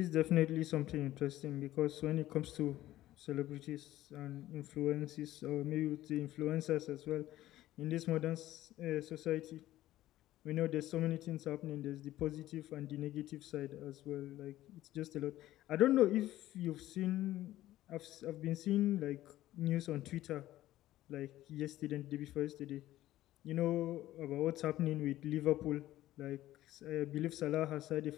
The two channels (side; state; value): right; quieter; 14.8 dB